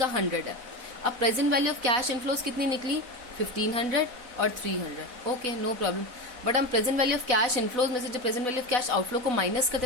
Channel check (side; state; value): left; late; 4.0 ms